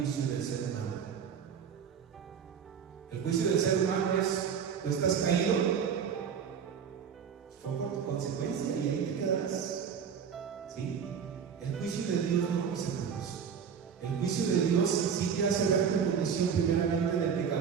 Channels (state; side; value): quieter; left; 7.1 dB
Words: del ser humano. El juicio del ser humano es, tú estás caído, fue por tu consecuencia y ahí te quedarás. ¿Sí? El juicio de Dios no, mis hermanos. El juicio de Dios sí te hace ver tu condición primeramente de